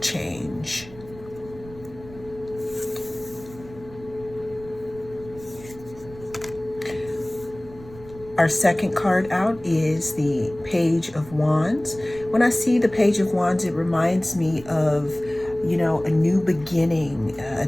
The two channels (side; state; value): right; noise; rumble, 19 dB below the sound